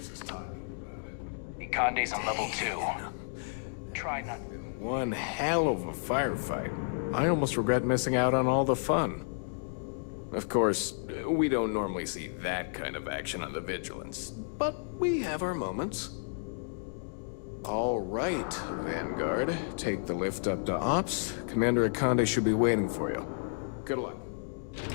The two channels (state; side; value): silent; right; digital silence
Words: is talking about it. Conde's on level 2. That must have been one hell of a firefight. I almost regret missing out on all the fun. Of course, we don't normally see that kind of action on the Vigilance, but we have our moments. All right, Vanguard. Take the lift up to Ops. Commander Conde should be waiting for you. Good luck.